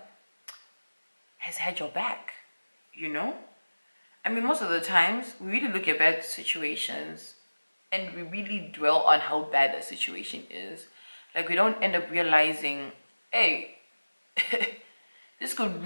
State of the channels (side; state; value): both; inverted; correlation -1.00